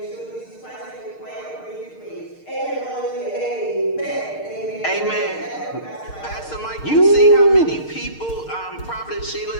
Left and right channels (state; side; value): late; right; 6.5 ms